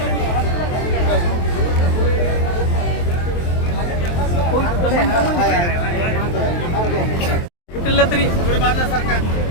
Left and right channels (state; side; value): late; right; 23 ms